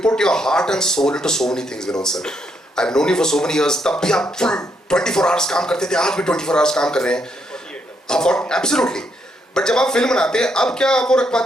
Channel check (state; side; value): normal; both; correlation 0.76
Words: put your heart and soul into so many things Vinod sir. I have known you for so many years, तब भी आप फुल 24 आवर्स काम करते थे, आज भी 24 आवर्स काम कर रहे हैं। एब्सोल्युटली। बट जब आप फिल्म बनाते हैं, अब क्या आप वो रख